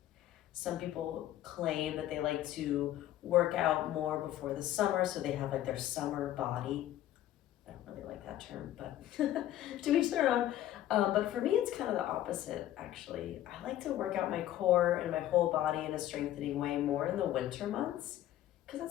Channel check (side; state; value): right; quieter; 13.0 dB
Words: Some people claim that they like to work out more before the summer, so they have like their summer body. I don't really like that term, but to each their own. But for me, it's kind of the opposite, actually. I like to work out my core and my whole body in a strengthening way more in the winter months, because